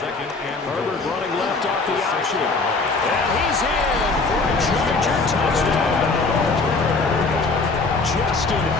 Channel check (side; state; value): right; quieter; 3.8 dB